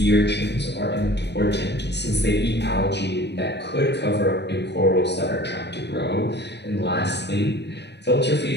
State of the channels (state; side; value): late; right; 0.50 ms